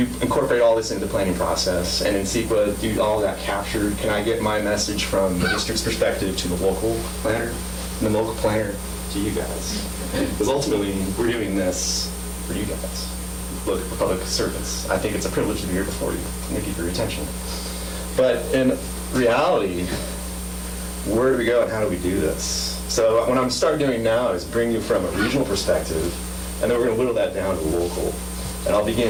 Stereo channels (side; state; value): both; identical; correlation 1.00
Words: incorporate all this into the planning process? And in CEQA, do all that captured? Can I get my message from the district's perspective to the local planner, and the local planner to you guys? Because ultimately, we're doing this for you guys. Look, for public service. I think it's a privilege to be here before you. Thank you for your attention. But in reality, where do we go and how do we do this? So what I'm starting doing now is bring you from a regional perspective, and then we're going to whittle that down to local. And I'll